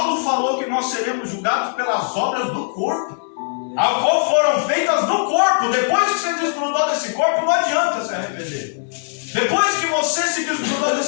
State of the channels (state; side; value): silent; right; digital silence